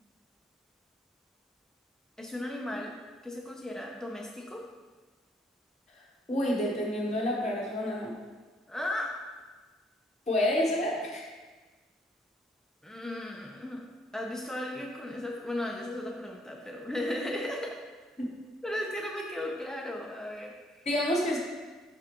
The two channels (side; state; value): both; normal; correlation 0.66